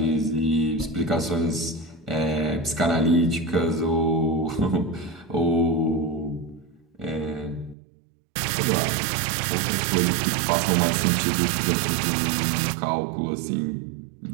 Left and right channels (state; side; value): drops out; left; at 7.8 s